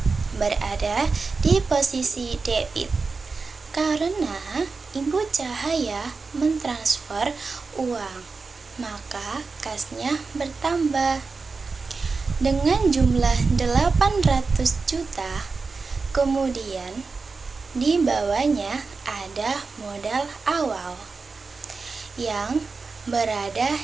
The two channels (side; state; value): left; quieter; 4.3 dB